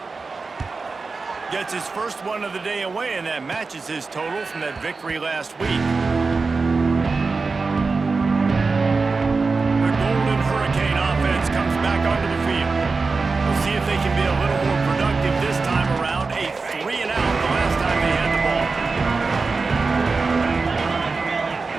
Gets his first one of the day away, and that matches his total from that victory last week. The Golden Hurricane offense comes back onto the field. We'll see if they can be a little more productive this time around. A 3 and out the last time they had the ball.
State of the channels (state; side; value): quieter; left; 4.2 dB